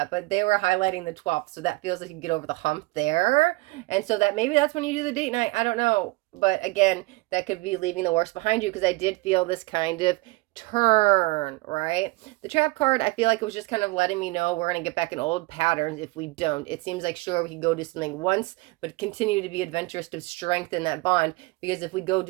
but they were highlighting the 12th. So that feels like you can get over the hump there. And so that maybe that's when you do the date night. I don't know. But again, that could be leaving the worst behind you, because I did feel this kind of turn, right? The trap card, I feel like it was just kind of letting me know we're going to get back in old patterns if we don't. It seems like, sure, we can go do something once, but continue to be adventurous to strengthen that bond. Because if we go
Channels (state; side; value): quieter; left; 22.8 dB